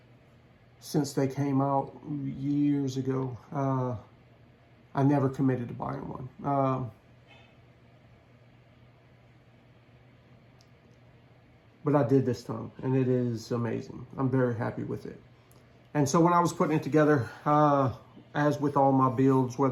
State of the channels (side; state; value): both; identical; correlation 1.00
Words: since they came out years ago, I never committed to buying one. But I did this time, and it is amazing. I'm very happy with it. And so when I was putting it together, as with all my builds,